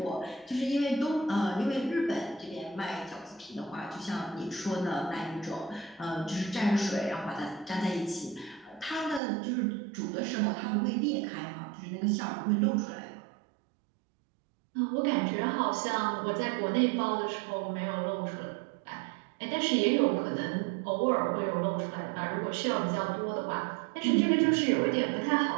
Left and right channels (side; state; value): left; drops out; at 9.2 s